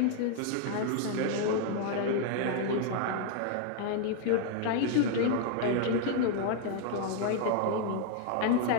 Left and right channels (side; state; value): both; different; correlation 0.00